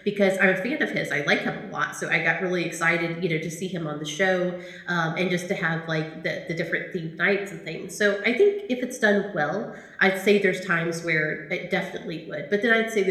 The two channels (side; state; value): both; identical; correlation 1.00